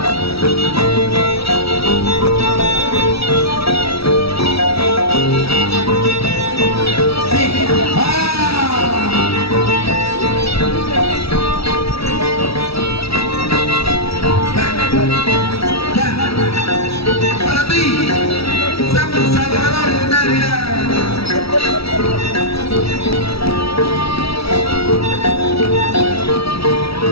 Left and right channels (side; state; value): right; late; 0.76 ms